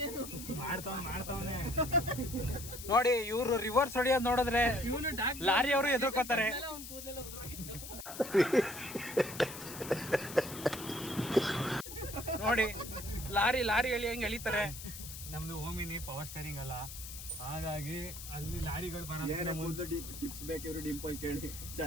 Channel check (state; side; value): noise; left; hiss, 11 dB below the sound